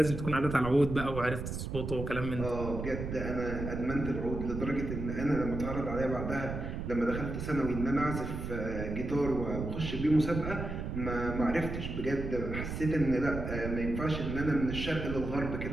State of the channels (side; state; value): right; noise; rumble, 5 dB below the sound